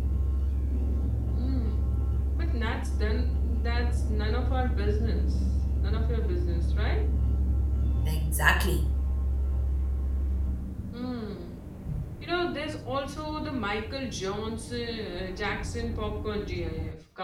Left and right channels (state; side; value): identical; both; correlation 1.00